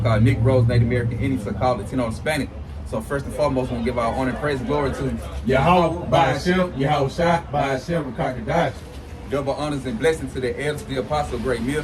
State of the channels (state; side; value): identical; both; correlation 1.00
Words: Negroes, Native American Indians, so-called Latino, and Hispanic. So first and foremost, we want to give our honor and praise and glory to Yahweh, by Hashem, Yahweh Shah, by Hashem, Rakakadash. Double honors and blessings to the elders, the apostle, great